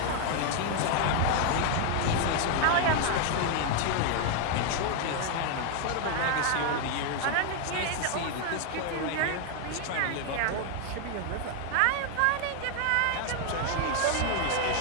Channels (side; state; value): both; different; correlation 0.00